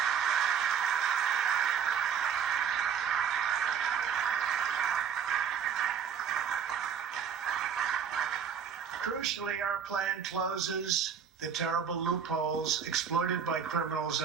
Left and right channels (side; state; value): left; quieter; 7.4 dB